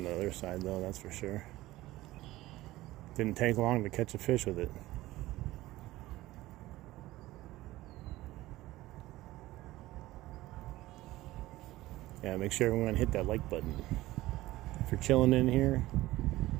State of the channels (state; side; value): quieter; left; 17.3 dB